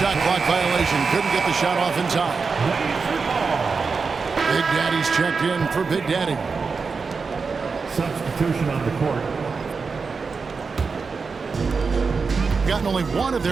clock violation. Couldn't get the shot off in time. Big Daddy's checked in for Big Daddy. Substitution on the court. Gotten only 1 of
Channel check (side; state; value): left; quieter; 4.9 dB